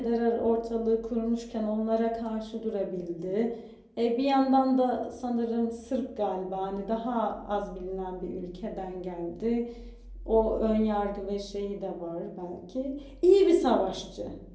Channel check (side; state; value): both; identical; correlation 1.00